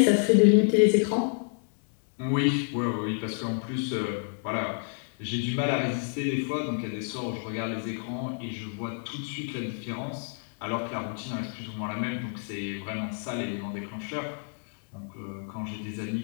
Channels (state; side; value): silent; right; 58 dB below the other